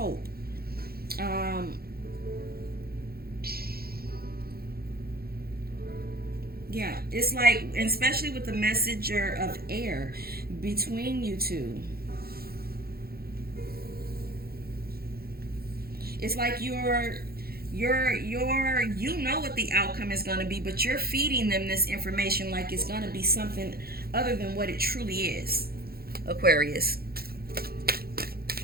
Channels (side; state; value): left; late; 0.44 ms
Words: Yeah, it's like, especially with the Messenger of Air between you two. It's like you know what the outcome is going to be, but you're feeding them this information like it's going to be something other than what it truly is. Aquarius.